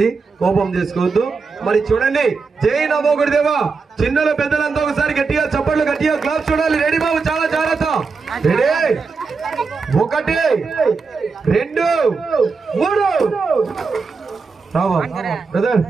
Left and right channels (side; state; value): left; quieter; 4.7 dB